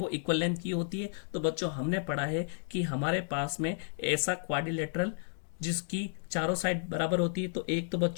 इक्वल लेंथ की होती है। तो बच्चों हमने पढ़ा है कि हमारे पास में ऐसा क्वाड्रिलेटरल जिसकी चारों साइड बराबर होती है, तो एक तो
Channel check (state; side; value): silent; right; digital silence